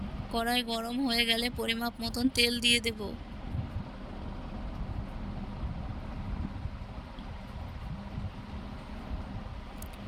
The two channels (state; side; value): identical; both; correlation 1.00